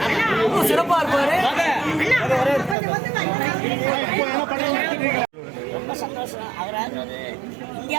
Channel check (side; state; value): left; drops out; at 2.8 s